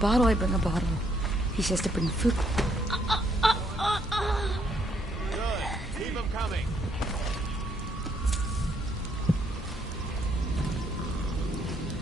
I bring a bottle. He says to bring food. Good. Keep them coming.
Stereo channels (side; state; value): both; normal; correlation 0.71